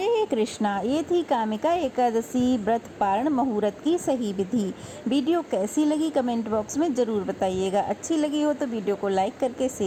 कृष्णा। ये थी कामिका एकादशी व्रत पारण मुहूर्त की सही विधि। वीडियो कैसी लगी कमेंट बॉक्स में ज़रूर बताइएगा। अच्छी लगी हो तो वीडियो को लाइक करके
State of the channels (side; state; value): both; identical; correlation 1.00